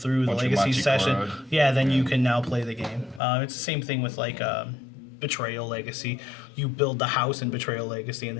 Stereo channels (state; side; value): drops out; right; at 3.2 s